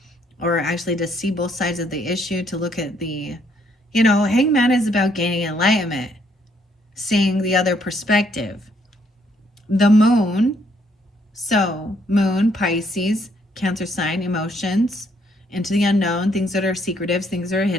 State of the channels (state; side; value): normal; both; correlation 0.69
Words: or actually to see both sides of the issue, to look at the, Hanged Man is about gaining enlightenment, seeing the other perspective. The Moon. So, Moon, Pisces, Cancer sign, emotions, into the unknown, things that are secretive, things that are